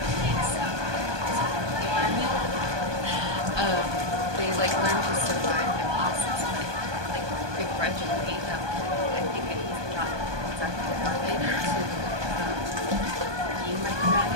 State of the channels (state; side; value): late; left; 1.2 ms